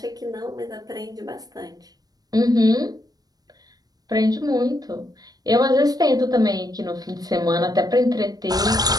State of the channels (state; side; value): late; left; 0.19 ms